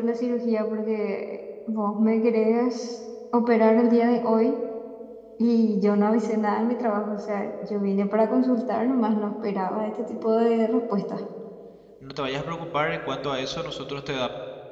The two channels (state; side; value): identical; both; correlation 1.00